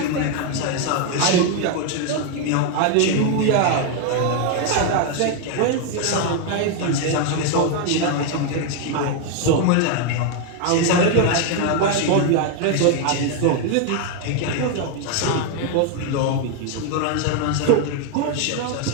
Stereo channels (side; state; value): both; different; correlation 0.01